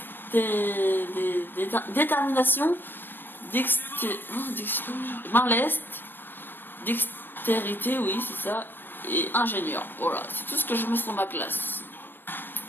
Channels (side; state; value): right; late; 0.096 ms